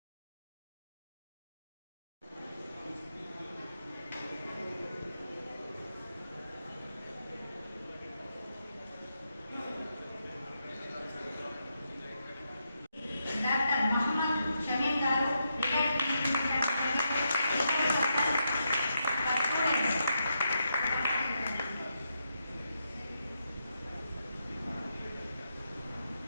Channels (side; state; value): both; inverted; correlation -0.83